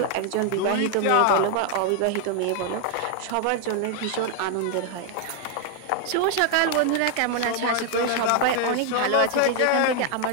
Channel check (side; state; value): both; different; correlation 0.00